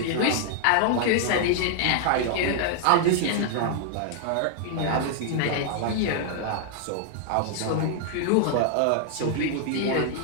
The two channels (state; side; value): different; both; correlation 0.00